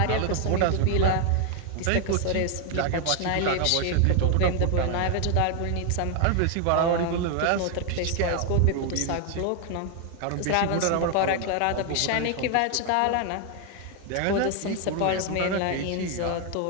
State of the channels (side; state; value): both; different; correlation 0.00